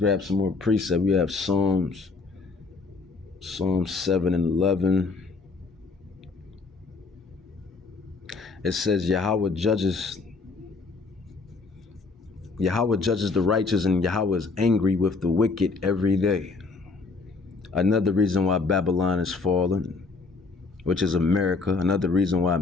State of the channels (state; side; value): quieter; right; 4.1 dB